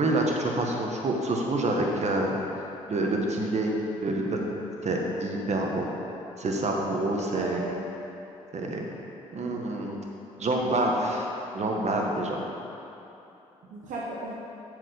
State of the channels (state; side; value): normal; both; correlation 0.49